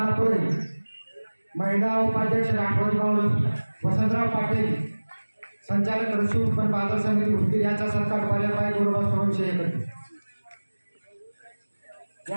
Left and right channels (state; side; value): inverted; both; correlation -1.00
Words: महिला उपाध्यक्ष राठोड वसंतराव पाटील, संचालक कृषी उत्पन्न बाजार समिती उदगीर याचा सत्कार पाहिल्यापाय गुरुवार विषय करते.